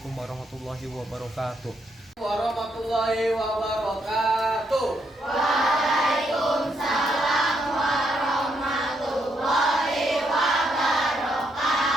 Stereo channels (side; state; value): both; normal; correlation 0.76